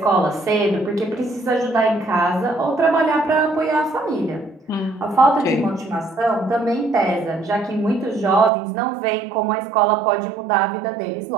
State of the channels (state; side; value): drops out; left; at 8.5 s